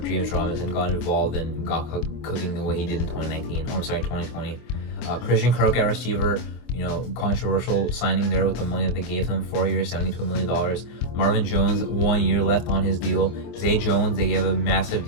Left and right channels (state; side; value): late; right; 25 ms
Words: James Robinson got involved and got cooking the way he did in 2020. Christian Kirk at receiver, controversial signing there with the money that they gave him, 4 years, $72 million. Marvin Jones, 1 year left on his deal. Zay Jones, they gave a massive